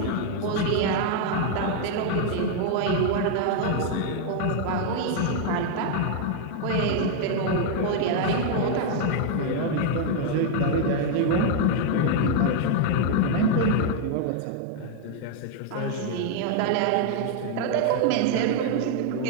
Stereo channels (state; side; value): different; both; correlation 0.00